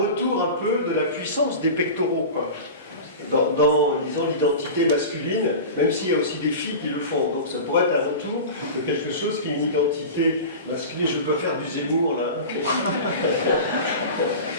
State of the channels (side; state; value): both; inverted; correlation -0.31